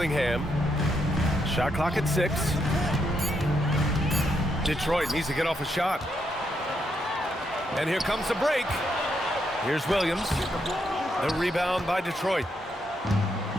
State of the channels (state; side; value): normal; both; correlation 0.79